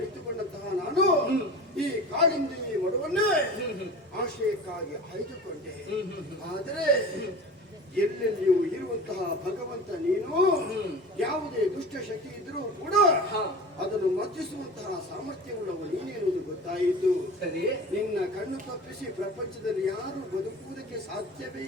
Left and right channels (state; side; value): normal; both; correlation 0.36